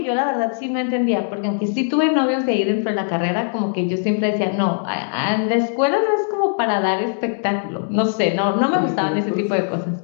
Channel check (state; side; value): silent; right; digital silence